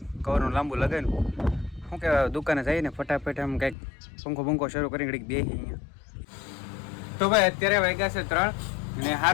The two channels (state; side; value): drops out; right; at 3.8 s